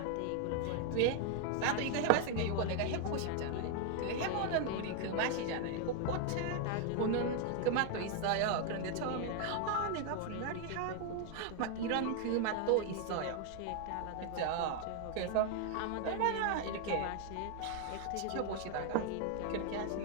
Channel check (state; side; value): different; both; correlation 0.00